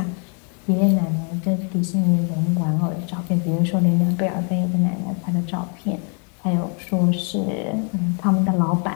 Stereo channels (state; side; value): quieter; right; 39.8 dB